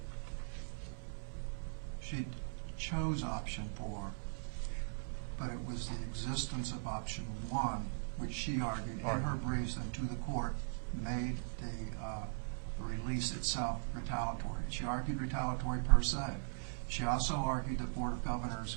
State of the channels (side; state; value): left; silent; 51 dB below the other